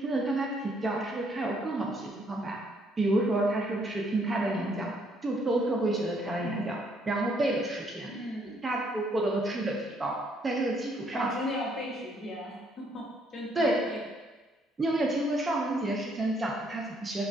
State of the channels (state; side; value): normal; both; correlation 0.69